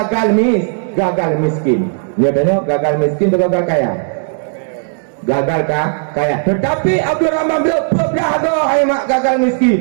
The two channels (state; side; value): silent; left; digital silence